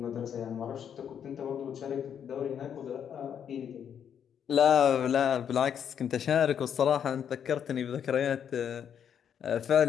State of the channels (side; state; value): right; quieter; 8.5 dB